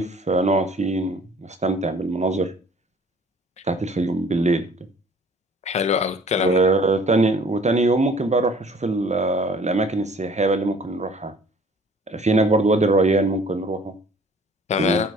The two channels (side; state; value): both; normal; correlation 0.53